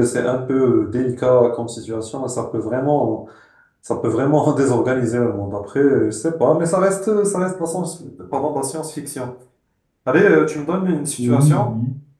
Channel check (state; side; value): identical; both; correlation 1.00